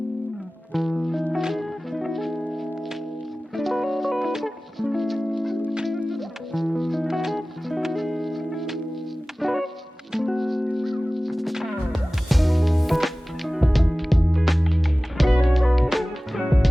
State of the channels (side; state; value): both; normal; correlation 0.97